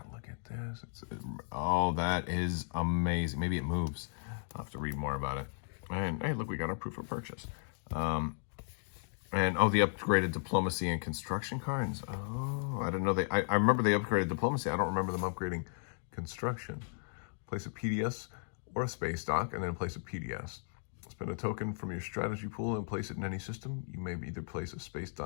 Look at this. Oh, that is amazing. Maybe it moves. I'll have to read more about it. And hey, look, we got our proof of purchase. And oh, the upgraded diplomacy and construction cards. Oh, I didn't know they. I remember they upgraded diplomacy. I don't remember them upgrading construction. Place a PDS or a space dock, and then place a PDS. Spend a token from your strategy pool and place it in any system. You may either place a space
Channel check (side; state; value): right; silent; digital silence